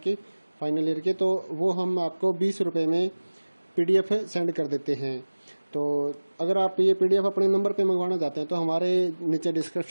फाइनल ईयर के, तो वो हम आपको 20 रुपये में PDF सेंड कर देते हैं। तो अगर आप ये PDF अपने नंबर पे मंगवाना चाहते हैं तो हमारे नीचे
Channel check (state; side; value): inverted; both; correlation -1.00